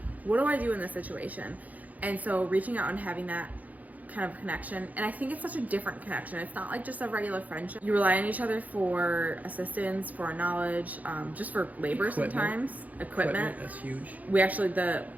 what do I do in this situation? And so reaching out and having that kind of connection, and I think it's such a different connection. It's not like just a regular friendship. You rely on each other for assistance, for knowledge, just for labor sometimes. Equipment. That's huge. We actually,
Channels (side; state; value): left; late; 0.078 ms